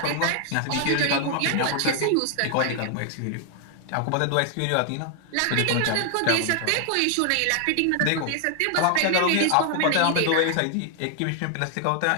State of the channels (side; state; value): both; different; correlation 0.00